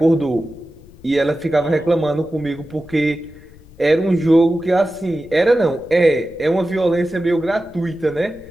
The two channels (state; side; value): noise; left; rumble, 23 dB below the sound